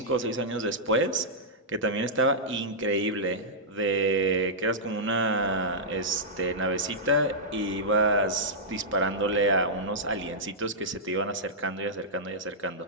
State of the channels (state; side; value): normal; both; correlation -0.11